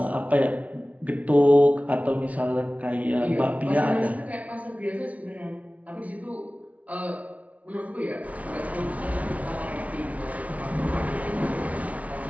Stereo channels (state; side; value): late; left; 0.068 ms